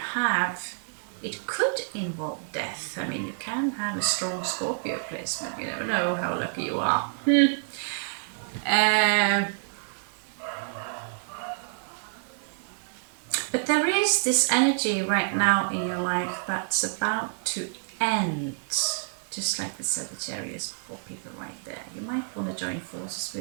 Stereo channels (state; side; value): silent; left; digital silence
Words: have, it could involve death. I mean, you can have a strong Scorpio placement. You never know how lucky you are. But there is this energy right now in your life that's about to end. Just like the Sagittarius people right there. You might want to join forces